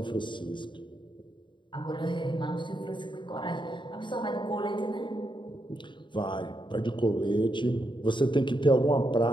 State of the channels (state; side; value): late; right; 0.23 ms